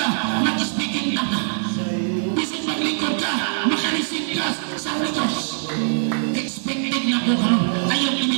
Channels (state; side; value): silent; left; digital silence